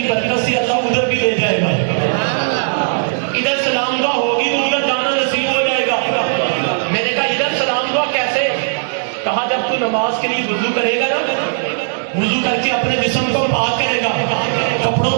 برکت سے اللہ ادھر بھی لے جائے گا. ادھر سلام دعا ہوگی تو ادھر جانا نصیب ہو جائے گا. میں نے کہا ادھر سلام دعا کیسے؟ کہا جب تو نماز کے لیے وضو کرے گا نا, وضو کر کے اپنے جسم کو پاک کرے گا,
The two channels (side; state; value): left; silent; 68 dB below the other